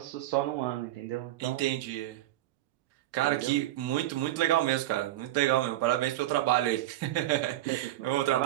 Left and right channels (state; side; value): quieter; left; 14.6 dB